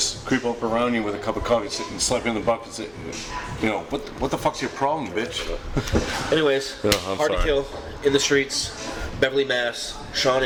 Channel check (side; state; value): both; identical; correlation 1.00